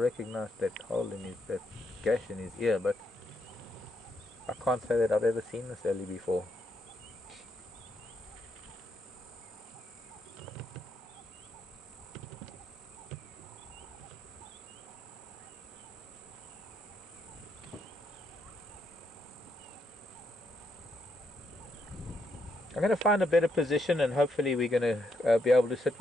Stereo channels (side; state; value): both; normal; correlation 0.78